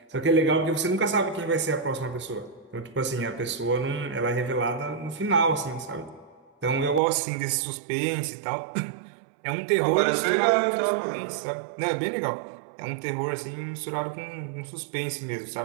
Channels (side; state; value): left; drops out; at 7.0 s